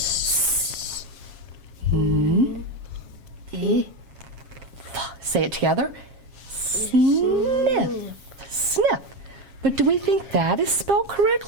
Say it together. Sniff. Sniff. But do we think that is spelled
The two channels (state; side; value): late; left; 7.4 ms